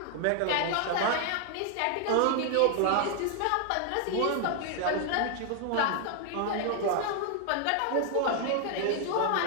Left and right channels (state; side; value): different; both; correlation 0.00